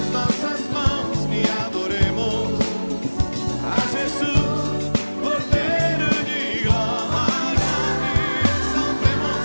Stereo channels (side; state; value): both; inverted; correlation -1.00